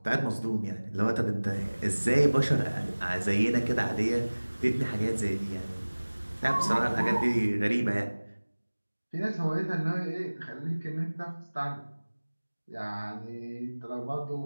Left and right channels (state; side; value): inverted; both; correlation -1.00